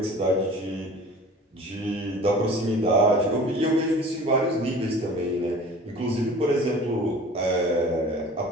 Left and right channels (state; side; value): normal; both; correlation 0.43